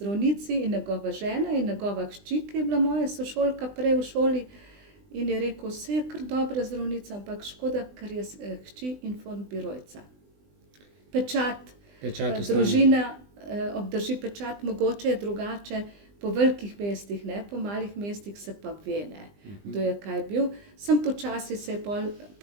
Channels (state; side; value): late; left; 20 ms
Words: in njegova žena in njegova hčer, ki je bila moja sošolka prej v šoli, in je rekel: "Saj je kar dobra zdravnica, ampak škoda, ker je hči informbirojca." Pečat, Pečat ostane. družina obdrži pečat, mogoče je drugače po velikih mestih, ne, po malih mestih se pa ve, ne, kdo je kaj bil. Samo počasi se je pol